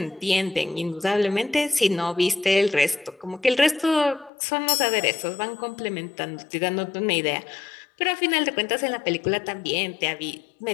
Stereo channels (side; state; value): right; drops out; at 4.3 s